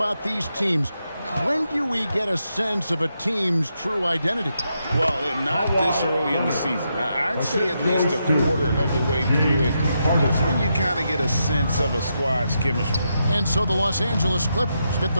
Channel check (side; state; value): both; inverted; correlation -0.83